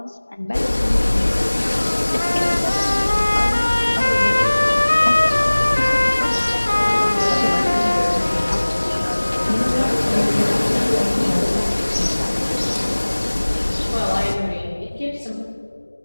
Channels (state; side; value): inverted; both; correlation -1.00